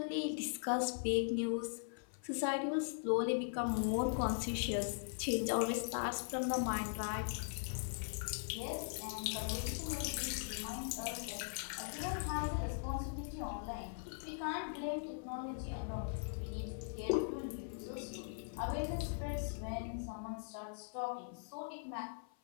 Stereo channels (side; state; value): right; silent; 51 dB below the other